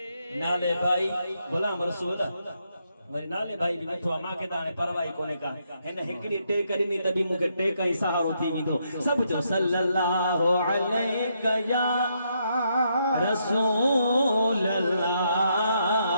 नाले भाई गुलाम रसूल मरे नाले भाई भी बैठो मां के दाने परवाही कोने का हिन हिकड़ी टेक ॾिनी तॾहिं मूंखे टेक ई सहारो थी वेंदो सब जो सल्लल्लाहु अलैका या रसूल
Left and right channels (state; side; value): inverted; both; correlation -0.77